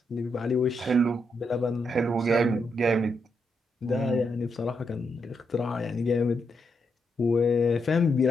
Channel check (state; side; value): normal; both; correlation 0.81